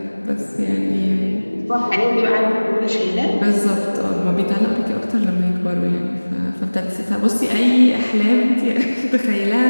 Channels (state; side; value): inverted; both; correlation -1.00